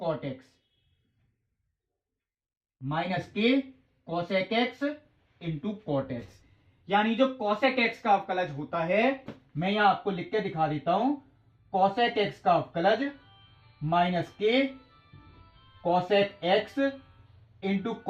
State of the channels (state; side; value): identical; both; correlation 1.00